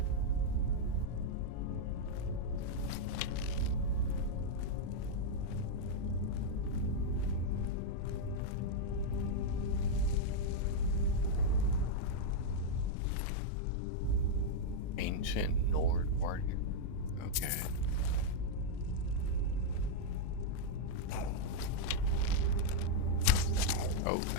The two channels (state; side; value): different; both; correlation -0.02